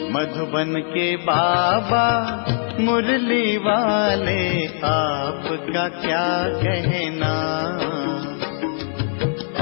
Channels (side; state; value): right; silent; 58 dB below the other